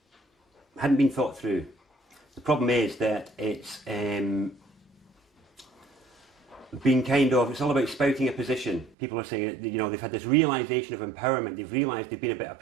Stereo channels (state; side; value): drops out; left; at 9.0 s